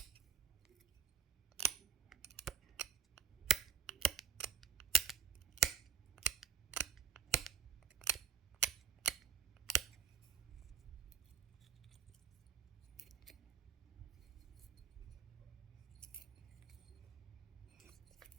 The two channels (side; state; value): left; quieter; 7.3 dB